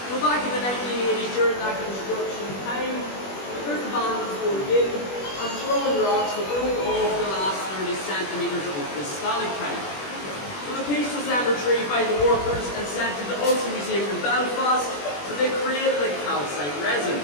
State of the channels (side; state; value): right; late; 21 ms